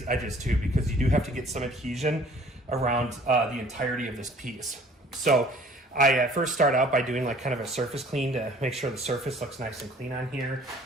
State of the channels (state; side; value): normal; both; correlation 0.53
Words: edges too, because you do have to get some adhesion around the entirety of this piece. So I first start out by doing like kind of a surface clean to make sure the surface looks nice and clean on here.